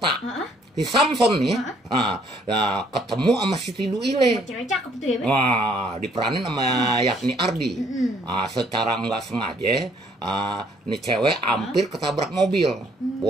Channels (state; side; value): normal; both; correlation 0.64